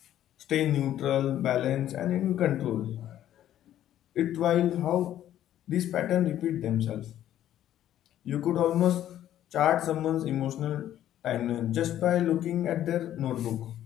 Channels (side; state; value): right; quieter; 11.9 dB